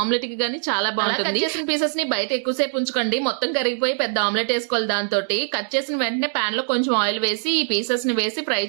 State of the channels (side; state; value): left; silent; digital silence